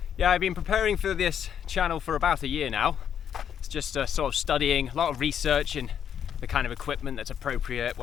Yeah, I've been preparing for this channel for about a year now. It's just sort of studying, a lot of research and the kind of equipment that's appropriate,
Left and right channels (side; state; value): right; quieter; 8.8 dB